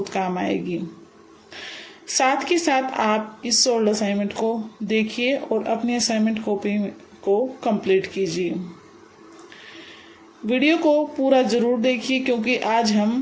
काम आएगी। साथ के साथ आप इस सोल्ड असाइनमेंट को देखिए और अपनी असाइनमेंट कॉपी को कंप्लीट कीजिए। वीडियो को पूरा ज़रूर देखिए क्योंकि आज हम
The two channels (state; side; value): identical; both; correlation 1.00